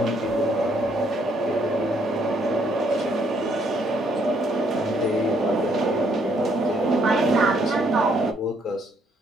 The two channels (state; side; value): normal; both; correlation 0.70